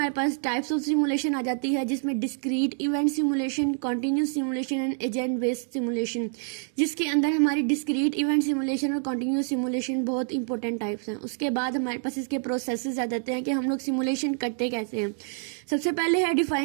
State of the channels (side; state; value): left; silent; 60 dB below the other